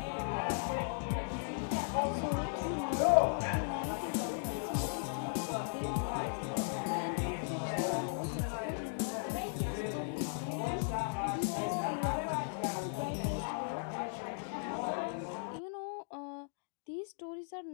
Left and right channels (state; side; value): silent; right; digital silence